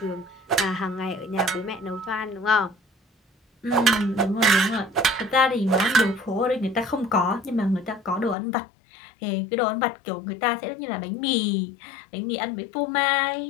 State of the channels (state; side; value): drops out; right; at 8.3 s